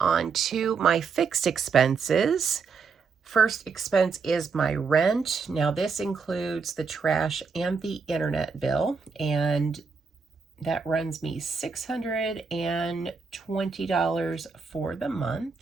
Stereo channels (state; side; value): quieter; left; 5.2 dB